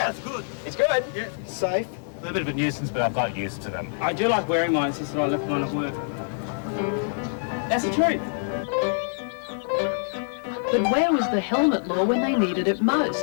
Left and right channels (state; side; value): silent; right; digital silence